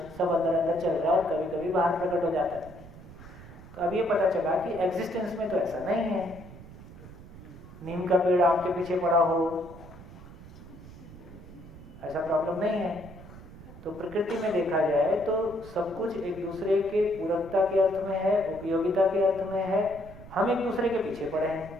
सब अंदर अंदर चल रहा है और कभी कभी बाहर प्रकट हो जाता है। तो अब ये पता चला कि एग्जिस्टेंस में तो ऐसा नहीं है, नीम का पेड़ आम के पीछे पड़ा हो, ऐसा प्रॉब्लम नहीं है। तो प्रकृति में देखा जाए तो सब कुछ एक दूसरे के पूरकता के अर्थ में है, उपयोगिता के अर्थ में है, हम एक दूसरे के पीछे पड़े हैं।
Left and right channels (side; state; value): right; noise; rumble, 17 dB below the sound